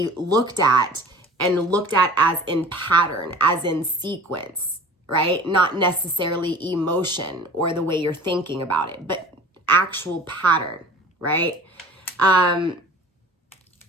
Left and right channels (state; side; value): normal; both; correlation 0.43